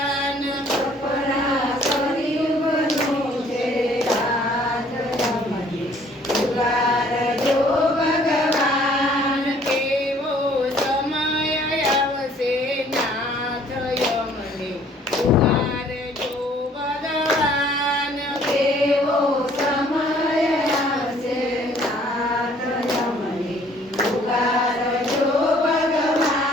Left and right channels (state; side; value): normal; both; correlation 0.58